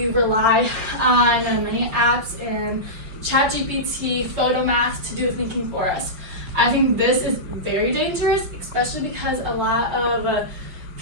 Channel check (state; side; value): late; left; 5.6 ms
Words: rely on many apps and ChatGPT, Photomath to do the thinking for us. I think this is very dangerous, especially because a lot of